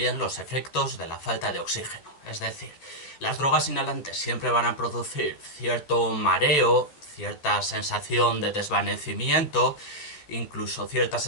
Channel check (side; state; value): right; late; 14 ms